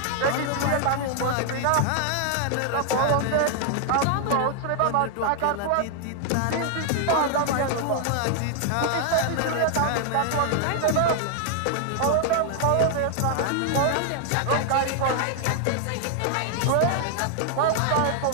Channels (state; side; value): different; both; correlation 0.00